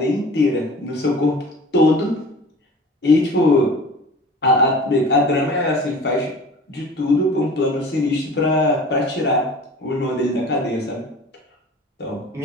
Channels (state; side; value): normal; both; correlation 0.41